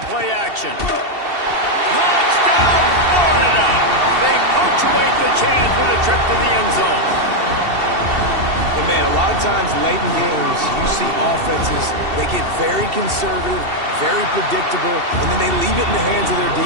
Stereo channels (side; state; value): left; late; 2.7 ms